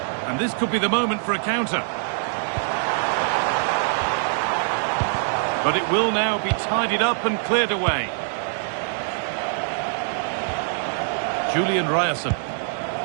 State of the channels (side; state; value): left; silent; 63 dB below the other